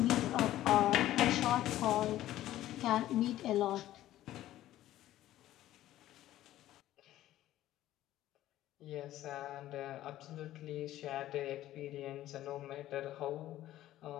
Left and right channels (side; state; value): right; quieter; 14.0 dB